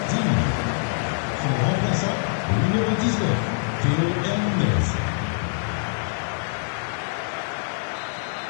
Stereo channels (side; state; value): right; silent; 62 dB below the other